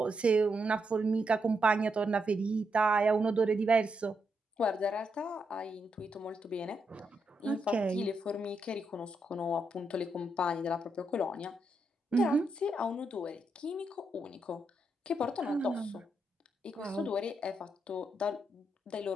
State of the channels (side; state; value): both; normal; correlation 0.81